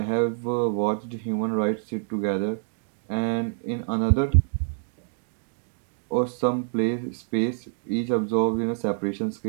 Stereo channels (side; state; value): left; silent; 61 dB below the other